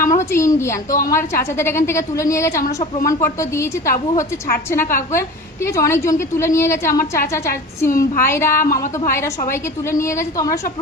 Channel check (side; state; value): both; normal; correlation 0.36